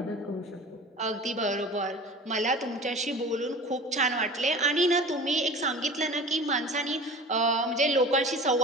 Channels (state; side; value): normal; both; correlation 0.38